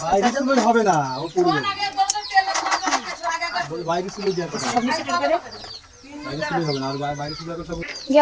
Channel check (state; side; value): identical; both; correlation 1.00